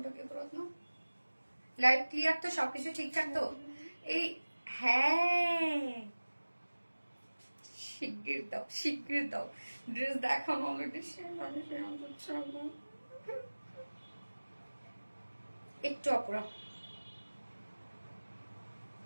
কি করত না? লাইভ ক্লিয়ার তো? সবকিছু ঠিকঠাক তো? এই হ্যাঁ শিগগির দাও, শিগগির দাও। ড্রেস দেখানো অলরেডি একটু আপুরা।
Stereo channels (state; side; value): inverted; both; correlation -1.00